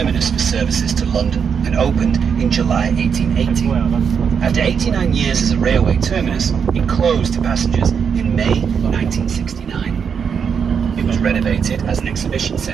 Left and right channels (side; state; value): left; quieter; 6.8 dB